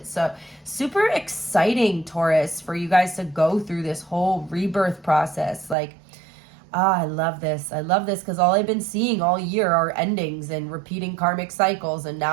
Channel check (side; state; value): left; drops out; at 5.8 s